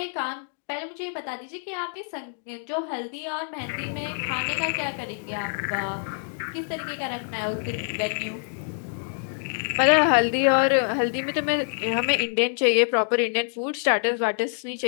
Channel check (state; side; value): silent; right; digital silence